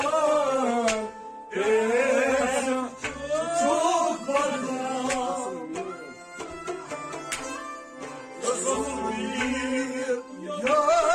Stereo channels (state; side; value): identical; both; correlation 1.00